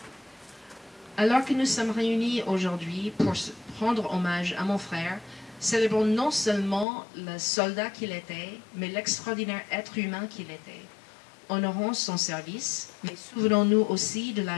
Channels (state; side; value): drops out; right; at 6.9 s